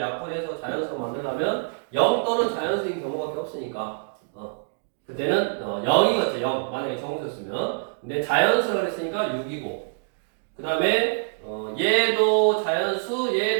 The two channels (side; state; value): left; silent; digital silence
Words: 자연수로 만들려면 0 또는 자연수인 경우밖에 없으니까 그때는 0이겠죠. 0 만약에 정수였으면. 근데 자연수라고 했으니까 6이고 그 다음에 얘도 자연수